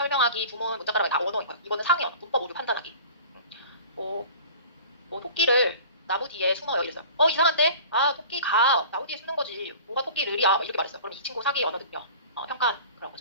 부문, 문자가락이 다 언어인 거예요. 이거는 상위 언어, 문법 오류 판단하기. 뭐, 뭐 토끼를 나무 뒤에 숨어요 이랬어요. 이상한데? 아 토끼가 나무 뒤에 숨는 거지. 뭐가 토끼를이야? 막 이렇게 말했어요. 그럼 이 친구 사기 언어 능력 평가 그런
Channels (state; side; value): inverted; both; correlation -0.42